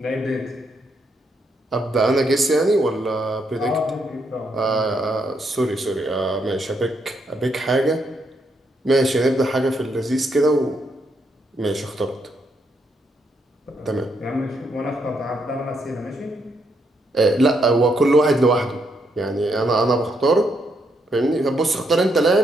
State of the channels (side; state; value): both; normal; correlation 0.77